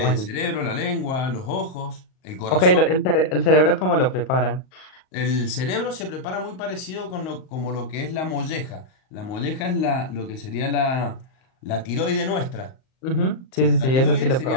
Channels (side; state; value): right; late; 38 ms